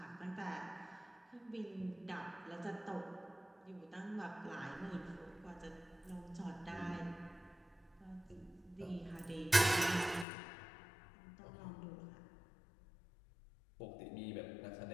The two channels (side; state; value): right; drops out; at 10.2 s